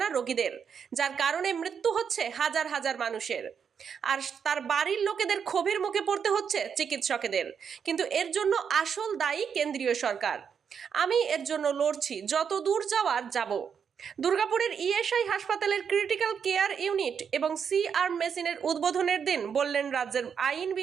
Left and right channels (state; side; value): quieter; left; 7.1 dB